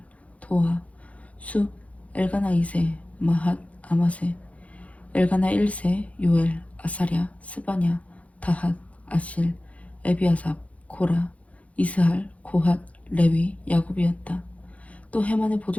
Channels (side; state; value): right; late; 0.066 ms